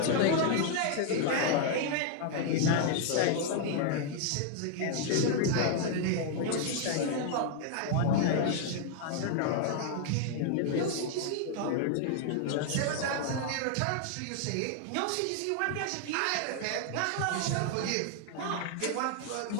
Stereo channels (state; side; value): different; both; correlation 0.00